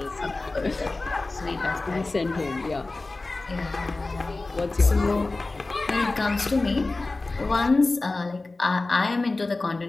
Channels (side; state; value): right; quieter; 3.3 dB